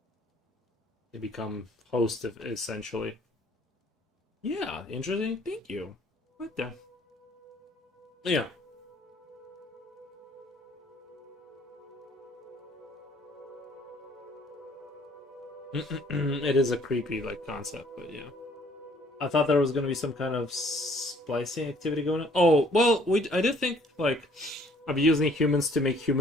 they become host of, essentially. Yeah, interesting. Thank you. What the? Yeah. It is a creepy like concept, but yeah. I thought there was gonna be some kind of splicing activity going on. Oh well, we I did think like of using humans to make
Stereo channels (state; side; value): normal; both; correlation 0.60